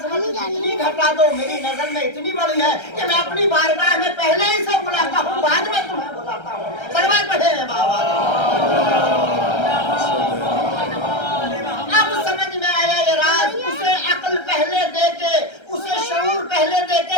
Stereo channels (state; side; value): late; right; 1.3 ms